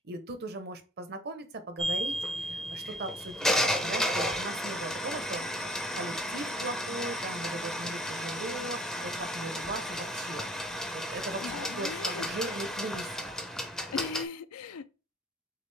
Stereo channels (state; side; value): normal; both; correlation 0.54